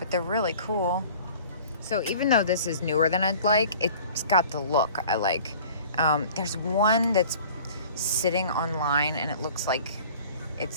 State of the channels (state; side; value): inverted; both; correlation -0.46